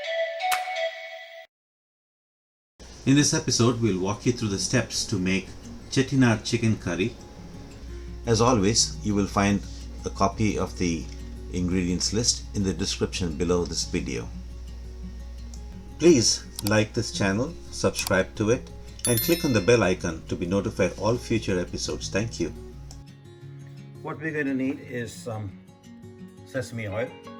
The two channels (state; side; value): identical; both; correlation 1.00